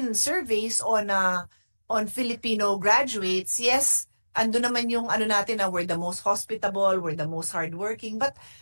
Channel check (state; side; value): inverted; both; correlation -1.00